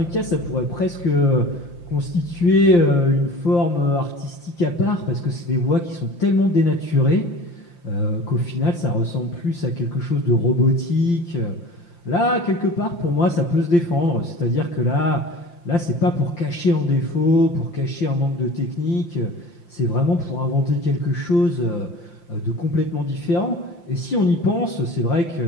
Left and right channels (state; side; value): late; right; 5.8 ms